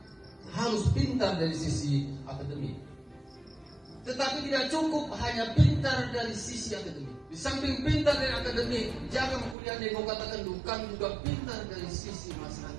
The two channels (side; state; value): left; drops out; at 9.6 s